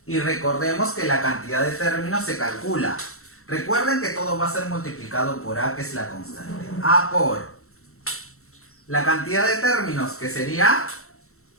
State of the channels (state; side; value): late; right; 0.63 ms